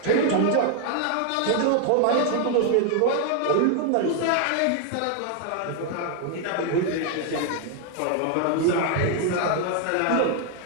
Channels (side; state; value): both; different; correlation 0.00